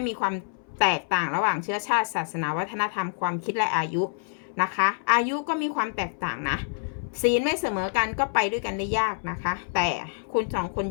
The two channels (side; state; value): right; silent; 60 dB below the other